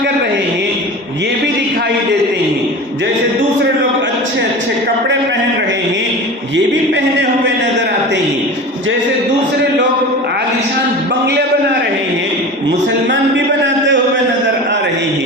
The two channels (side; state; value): both; normal; correlation 0.33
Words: کر رہے ہیں یہ بھی دکھائی دیتے ہیں، جیسے دوسرے لوگ اچھے اچھے کپڑے پہن رہے ہیں یہ بھی پہنے ہوئے نظر آتے ہیں، جیسے دوسرے لوگ عالیشان بنگلے بنا رہے ہیں مسلمان بھی بناتے ہوئے نظر آ رہے